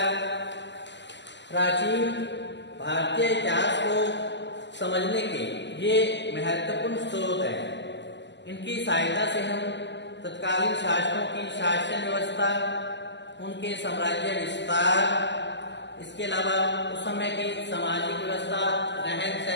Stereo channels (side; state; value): right; late; 0.51 ms